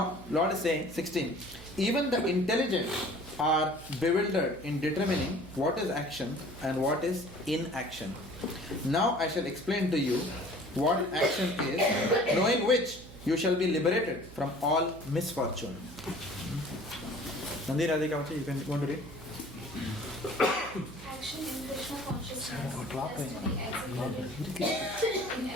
Lord is saying, 16, even the intelligent are bewildered in determining what is action and what is inaction. Now I shall explain to you what action is, knowing which you shall be liberated from all misfortune. Mandir, Radhika, you can want to read? Action in Krishna consciousness has to be executed in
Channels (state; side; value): noise; right; hum, 17 dB below the sound